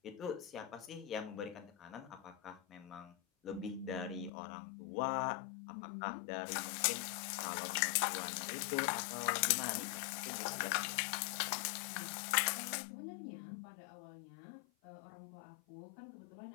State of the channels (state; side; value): drops out; right; at 4.3 s